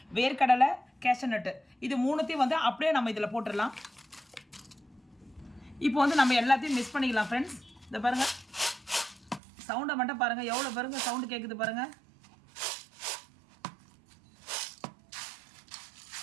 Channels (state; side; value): drops out; left; at 9.4 s